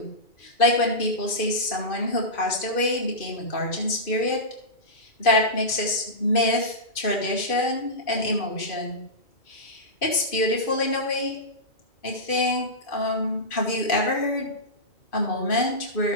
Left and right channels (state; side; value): late; right; 2.5 ms